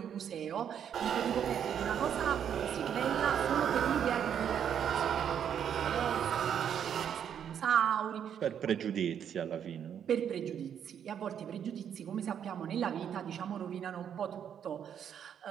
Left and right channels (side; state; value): left; quieter; 8.7 dB